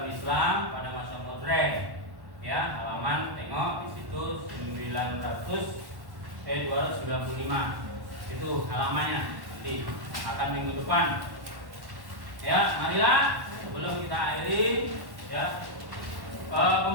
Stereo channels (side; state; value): left; late; 1.1 ms